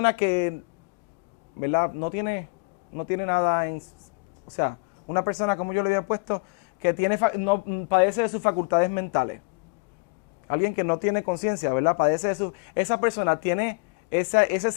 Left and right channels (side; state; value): right; quieter; 31.2 dB